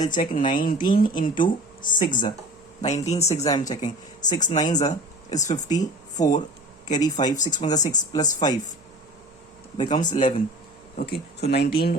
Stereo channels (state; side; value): noise; right; hum, 28 dB below the sound